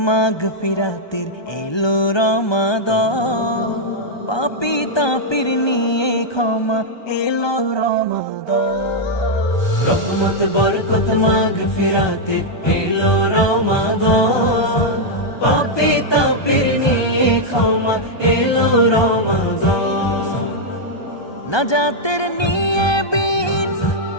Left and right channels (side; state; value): right; late; 1.2 ms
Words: মাগফিরাতের এলো রমাদান, পাপী তাপির নিয়ে ক্ষমা এলো রমাদান। রহমত বরকত মাগফিরাতের এলো রমাদান, পাপী তাপির নিয়ে ক্ষমা এলো রমাদান। নাজাতের নিয়ে বিন